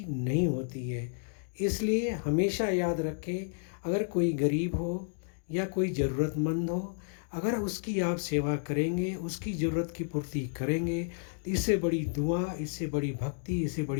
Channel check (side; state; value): right; silent; digital silence